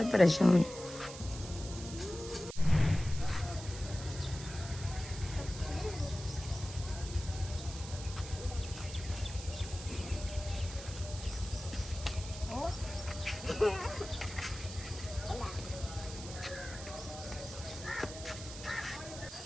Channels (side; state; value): right; noise; hiss, 12 dB below the sound